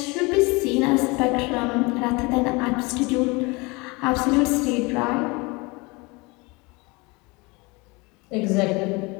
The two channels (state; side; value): quieter; right; 26.2 dB